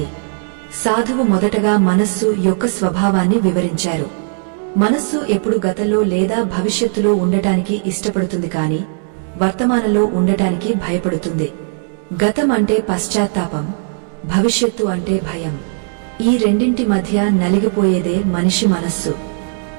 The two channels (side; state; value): left; silent; digital silence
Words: సాధువు మొదటగా మనస్సు యొక్క స్వభావాన్ని వివరించారు. మనస్సు ఎప్పుడు గతంలో లేదా భవిష్యత్తులో ఉండటానికి ఇష్టపడుతుంది. కాని వర్తమానంలో ఉండటానికి భయపడుతుంది. గతం అంటే పశ్చాత్తాపం, భవిష్యత్తు అంటే భయం. ఈ రెండింటి మధ్య నలిగిపోయేదే మనిషి మనస్సు.